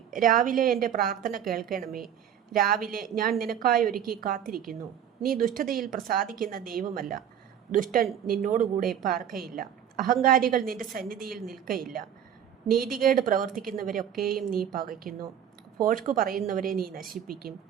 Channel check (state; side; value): quieter; left; 9.3 dB